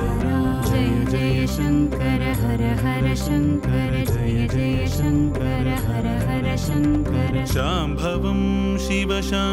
जय जय शंकर हर हर शंकर जय जय शंकर हर हर शंकर शांभवं शिव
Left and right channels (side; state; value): both; identical; correlation 1.00